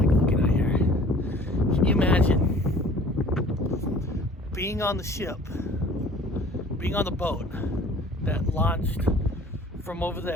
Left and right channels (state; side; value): normal; both; correlation 0.49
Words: looking out here. Can you imagine being on the ship, being on the boat that launched from over